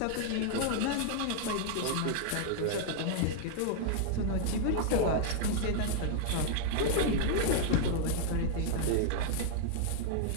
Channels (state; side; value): different; both; correlation -0.01